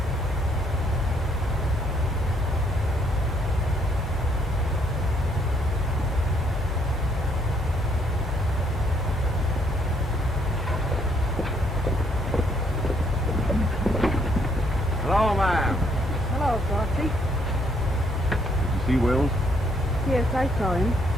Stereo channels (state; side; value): normal; both; correlation 0.69